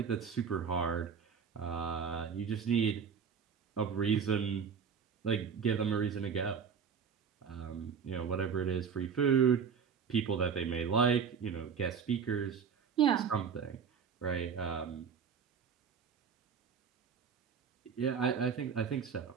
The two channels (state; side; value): quieter; left; 6.6 dB